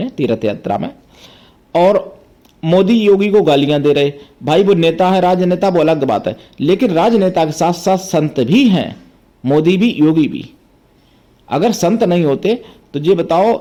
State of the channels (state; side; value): identical; both; correlation 1.00